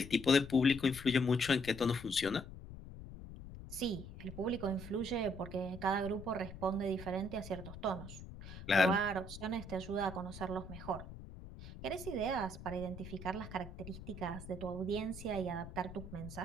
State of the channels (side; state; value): left; noise; rumble, 12 dB below the sound